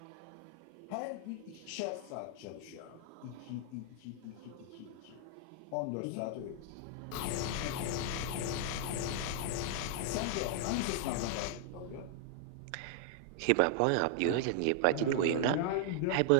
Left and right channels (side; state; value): both; different; correlation -0.01